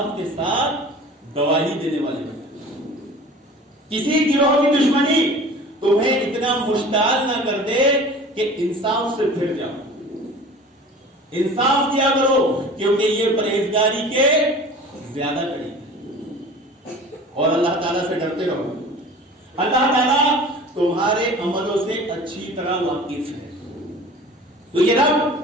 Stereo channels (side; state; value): both; normal; correlation 0.42